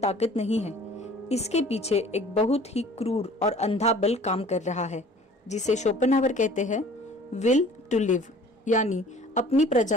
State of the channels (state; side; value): normal; both; correlation 0.49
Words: नहीं है। इसके पीछे एक बहुत ही क्रूर और अंधा बल काम कर रहा है जिसे शोपेनहावर कहते हैं विल टू लिव यानी अपनी